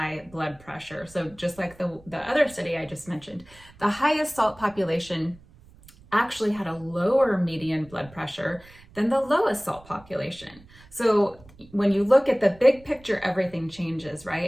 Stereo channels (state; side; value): noise; right; rumble, 24 dB below the sound